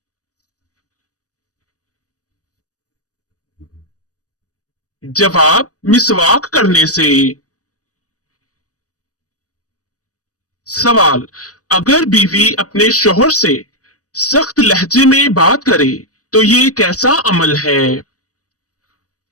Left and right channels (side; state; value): right; late; 0.66 ms